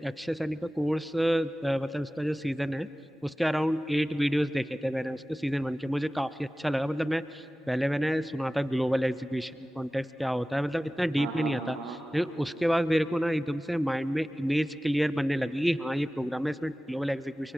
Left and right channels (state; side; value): normal; both; correlation 0.96